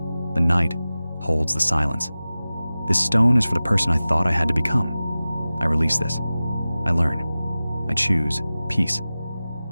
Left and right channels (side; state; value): both; inverted; correlation -0.96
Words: The night holds the silence. This stone is for the person I thought I had to become. I release this. I learn. I choose peace.